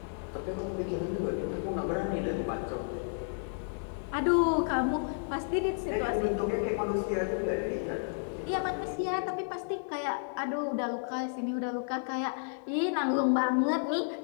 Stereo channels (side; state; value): right; silent; digital silence